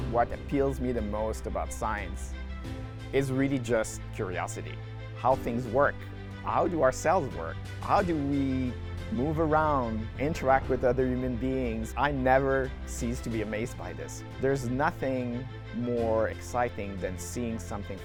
what appeals me the most about science is really just curiosity. How things work. How do our cells work? How do we move around, interact with other human beings? I never cease to be amazed by this. There's nothing more exciting than seeing something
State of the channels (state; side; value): identical; both; correlation 1.00